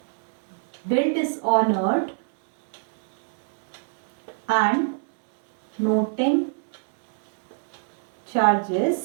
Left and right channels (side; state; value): left; silent; digital silence